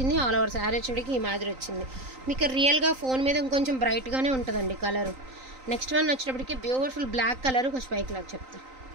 ఆల్ ఓవర్ శారీ వచ్చేటికి ఈ మాదిరి వచ్చింది. మీకు రియల్గా ఫోన్ మీద ఇంకొంచెం బ్రైట్గానే ఉంటుందండి కలరు. నెక్స్ట్ వన్ వచ్చేటప్పటికి బ్యూటిఫుల్ బ్లాక్ కలర్, కొంచెం పైకి లాగా చెప్తా.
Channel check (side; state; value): left; late; 3.9 ms